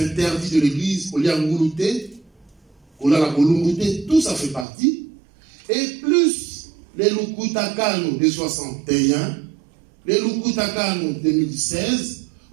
de l'Église, tout ça fait partie. Et plus les Lukutakano de 61, les Lukutakano 2016,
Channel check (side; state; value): left; drops out; at 4.7 s